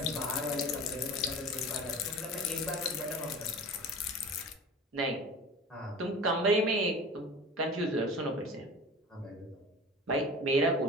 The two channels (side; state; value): both; normal; correlation 0.37